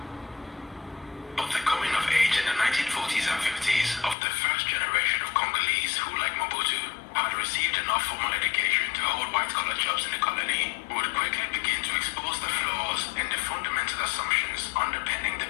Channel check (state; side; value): drops out; right; at 4.2 s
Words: But the coming of age in the 1940s and 50s of the first generation of Congolese who, like Mobutu, had received enough formal education to hold white-collar jobs in the colony would quickly begin to expose the flaws in the fundamental assumptions underpinning the